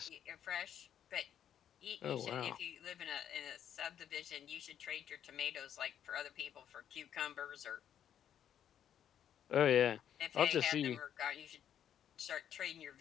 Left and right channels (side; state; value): right; quieter; 9.7 dB